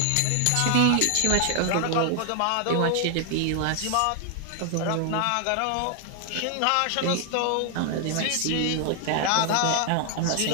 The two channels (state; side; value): different; both; correlation 0.00